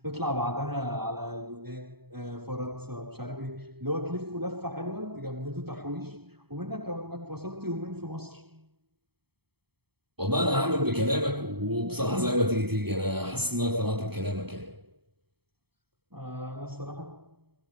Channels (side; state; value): left; late; 0.97 ms